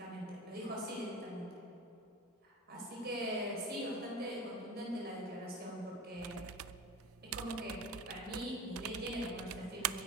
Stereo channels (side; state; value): both; normal; correlation 0.32